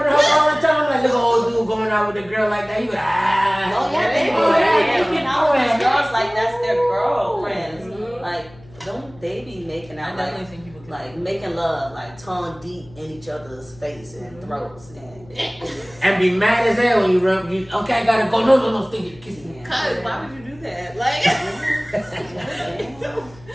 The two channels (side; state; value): left; noise; hum, 23 dB below the sound